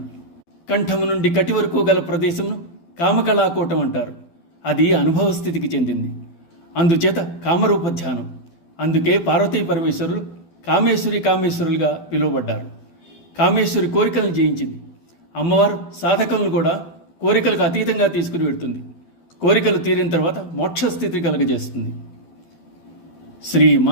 కంఠము నుండి కటి వరకు గల ప్రదేశమును కామకళాకూటం అంటారు. అది అనుభవ స్థితికి చెందింది. అందుచేత కామరూప ధ్యానం. అందుకే పార్వతీ పరమేశ్వరులు కామేశ్వరులుగా పిలువబడ్డారు. కామేశ్వరి కోరికలను జయించింది. అమ్మవారు సాధకులను కూడా కోరికలకు అతీతంగా తీసుకుని వెడుతుంది. కోరికలు తీరిన తర్వాత మోక్షస్థితి కలుగజేస్తుంది. శ్రీ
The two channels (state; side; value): late; right; 12 ms